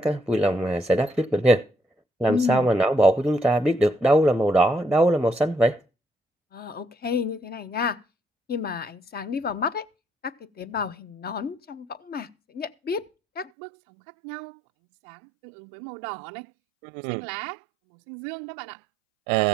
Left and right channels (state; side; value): drops out; left; at 13.5 s